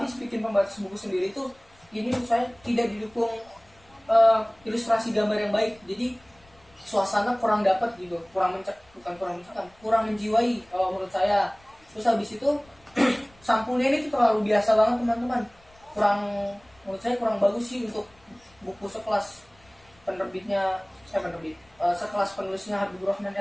pembatas buku sendiri tuh ini menurut saya tidak didukung ilustrasi gambar yang baik, jadi suasana kurang dapat gitu, kurang menjiwai kalau menurut saya. Terus habis itu sampulnya ini tuh terlalu biasa banget teman-teman, menurut saya kurang bagus sih untuk buku sekelas sekelas penulisnya Habibur Rahman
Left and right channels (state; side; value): noise; left; rumble, 30 dB below the sound